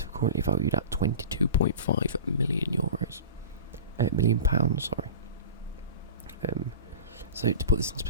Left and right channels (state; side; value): inverted; both; correlation -0.34